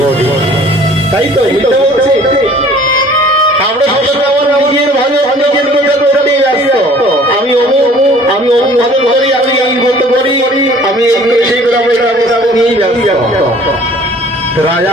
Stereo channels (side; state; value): both; normal; correlation 0.51